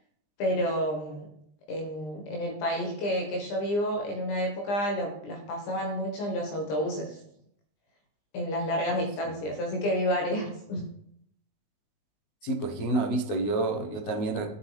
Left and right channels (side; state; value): right; late; 20 ms